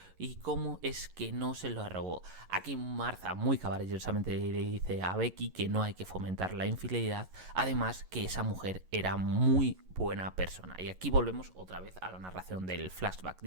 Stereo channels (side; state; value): left; late; 11 ms